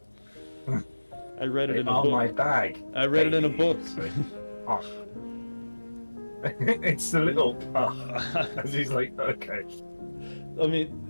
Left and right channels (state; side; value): inverted; both; correlation -1.00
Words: I read it in a book. My bag. I read it in a book. Oh. It's the little. As he's like, okay. I